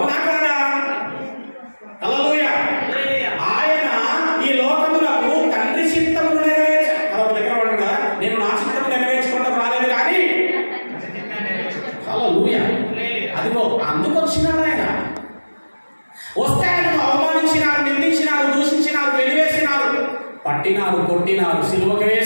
కాదా? హల్లెలూయా. ఆయన ఈ లోకములకు తండ్రి చిత్తమును దగ్గర ఉంటాడు కదా, నేను నా చిత్తము నెరవేర్చుకుంటూ రాలేదు కానీ హల్లెలూయా. అదిగో అందుకు వచ్చినాడు ఆయన. వస్తే ఆయనను అవమానించినారు, నిందించినారు, దూషించినారు, వెలివేసినారు, పట్టినారు, కొట్టినారు, సిలువకు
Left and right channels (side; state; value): both; inverted; correlation -1.00